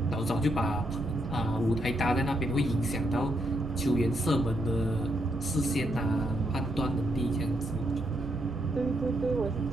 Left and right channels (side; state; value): both; normal; correlation 0.78